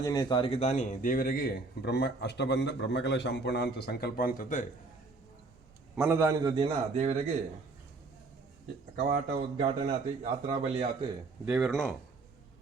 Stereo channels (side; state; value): left; quieter; 3.6 dB